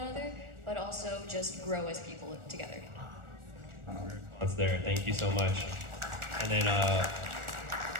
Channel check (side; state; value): left; late; 1.4 ms